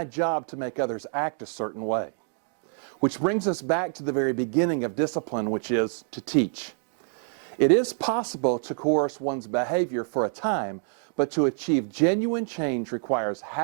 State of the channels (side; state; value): left; silent; 60 dB below the other